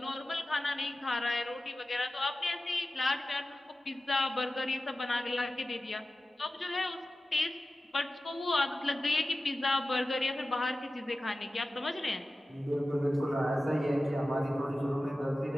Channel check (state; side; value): normal; both; correlation 0.94